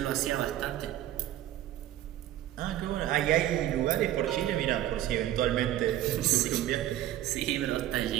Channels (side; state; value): left; quieter; 13.0 dB